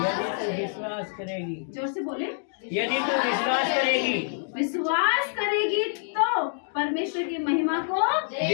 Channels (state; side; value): silent; right; digital silence